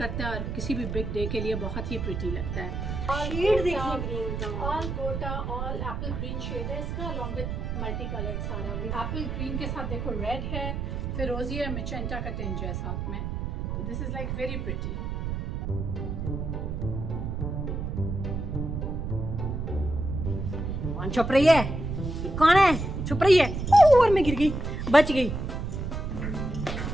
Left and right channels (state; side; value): noise; right; rumble, 3 dB below the sound